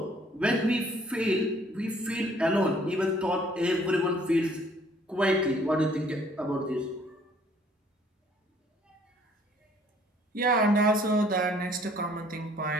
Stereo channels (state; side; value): normal; both; correlation 0.60